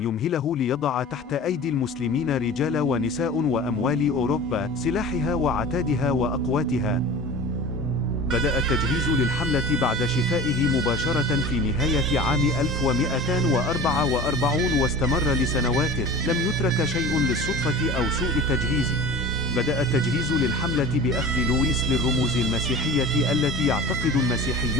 يمهله ليضع تحت أيدي المسلمين رجال ونساء وأموال أوروبا، سلاحها وعتادها وأقواتها. بدأ التجهيز للحملة بعد شفائه مباشرة في نهاية عام 1244 واستمر لسنوات، لم يترك شيء للصدفة أو سوء التجهيز. بدأ التجهيز للحملة بأخذ لويس للرموز المسيحية التي يعتقد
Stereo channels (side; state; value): both; normal; correlation 0.37